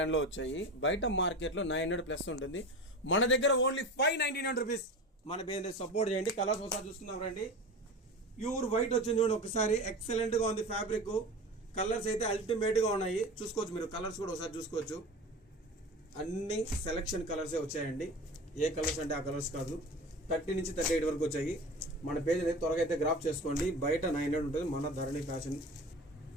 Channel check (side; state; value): both; normal; correlation 0.32